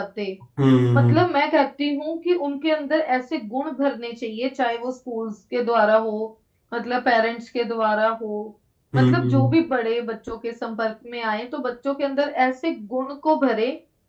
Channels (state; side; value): identical; both; correlation 1.00